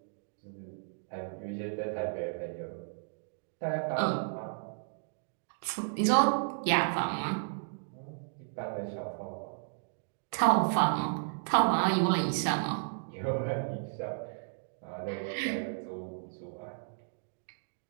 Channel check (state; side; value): silent; left; digital silence